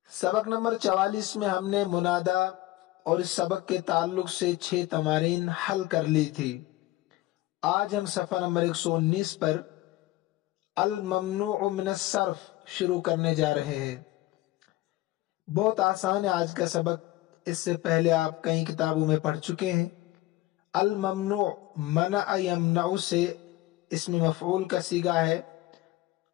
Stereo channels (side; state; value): right; quieter; 17.5 dB